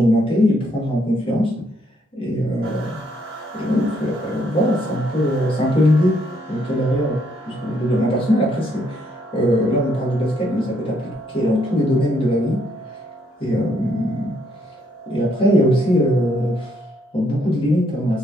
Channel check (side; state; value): both; normal; correlation 0.71